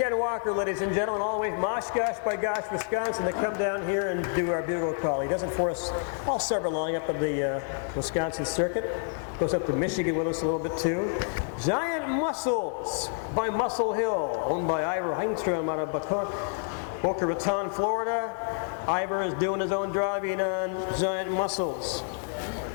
Walker, ladies and gentlemen, all the way from Oshkosh by Gosh, Wisconsin, to come down here and do our bugle call. He does it for us all summer long up on the Wisconsin circuit. Goes up to Michigan with us a little bit too. Giant Muscles by Muscle Hill, owned by Ivor Heinstrom out of Boca Raton, Florida. Ivor is doing his own driving on Giant Muscles.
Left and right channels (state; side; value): silent; right; 57 dB below the other